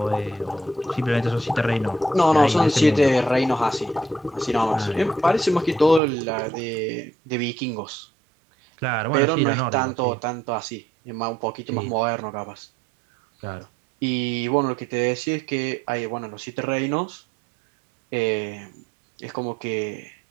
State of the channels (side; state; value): left; drops out; at 6.0 s